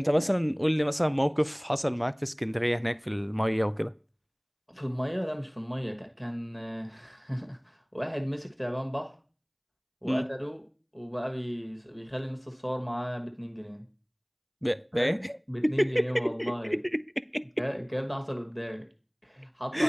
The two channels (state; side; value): identical; both; correlation 1.00